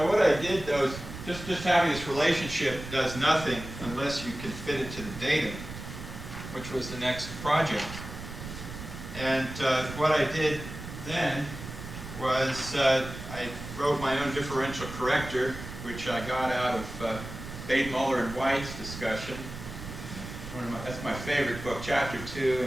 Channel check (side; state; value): right; noise; rumble, 10 dB below the sound